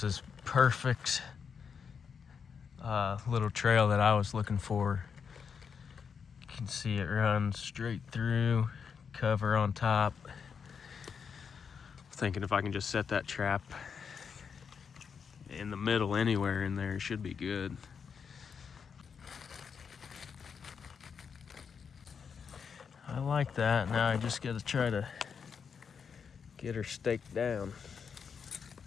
is perfect little trail that I was looking for. You can see it runs straight through, cover on top. Thinking if I can just set that trap in the middle anywhere in there, it should be good. I like that. Now I just gotta try to get her staked down.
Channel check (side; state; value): right; quieter; 6.4 dB